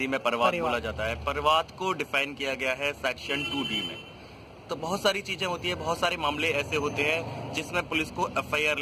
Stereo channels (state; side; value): identical; both; correlation 1.00